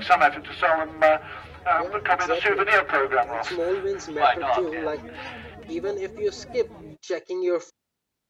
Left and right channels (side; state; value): both; identical; correlation 1.00